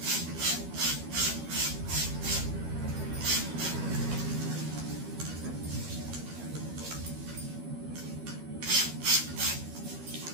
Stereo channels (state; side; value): late; left; 13 ms